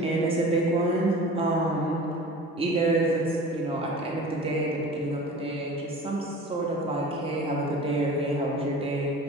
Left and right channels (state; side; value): normal; both; correlation 0.40